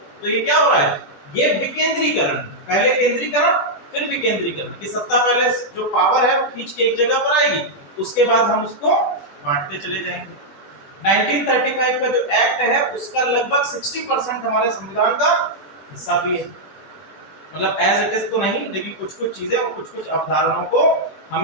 तो ये क्या हो रहा है, ये विकेंद्रीकरण, पहले केंद्रीकरण फिर विकेंद्रीकरण, की सत्ता पहले जो पावर है वो खींच के एक जगह पर आएगी, उसके बाद हम उसको बांटते चले जाएंगे। 1935 का जो एक्ट है उसका लगभग 60% हमारे संविधान का हिस्सा भी है, मतलब एज इट इज तो नहीं, लेकिन कुछ कुछ चीजें और कुछ कुछ अवधारणाओं को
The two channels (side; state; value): right; late; 20 ms